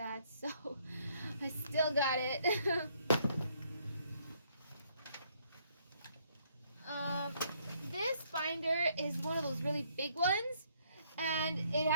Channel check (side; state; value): both; inverted; correlation -0.68